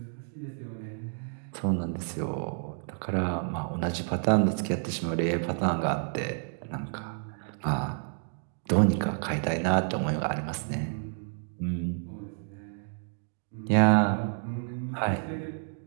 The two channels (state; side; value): silent; left; 57 dB below the other